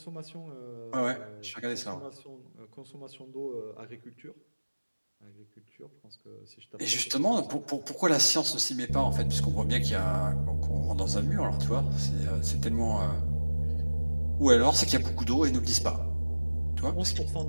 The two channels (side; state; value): both; inverted; correlation -1.00